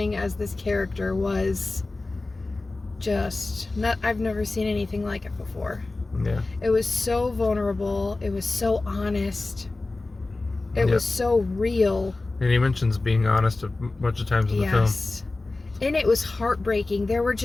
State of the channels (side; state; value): right; quieter; 3.2 dB